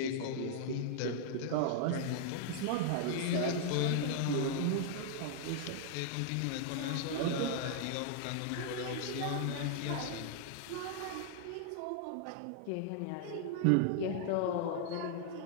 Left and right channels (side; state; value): both; different; correlation -0.01